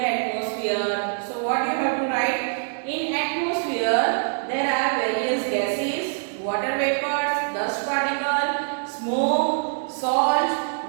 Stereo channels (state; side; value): silent; left; digital silence